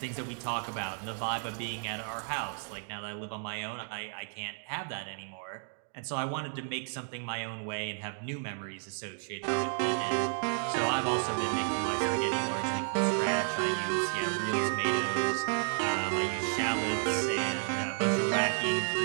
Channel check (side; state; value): left; silent; 56 dB below the other